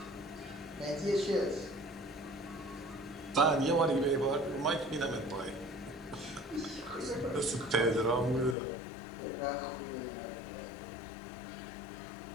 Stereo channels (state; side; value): drops out; right; at 8.6 s